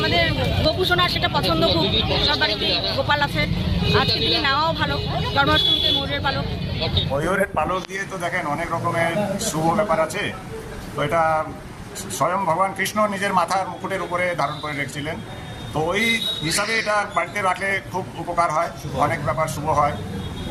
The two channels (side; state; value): both; identical; correlation 1.00